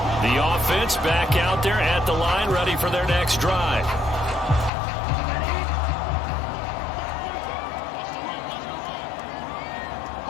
The offense back out there at the line, ready for their next drive.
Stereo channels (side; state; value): right; drops out; at 4.7 s